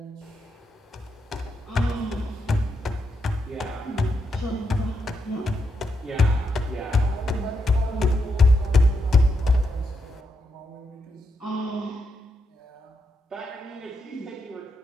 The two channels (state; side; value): normal; both; correlation 0.82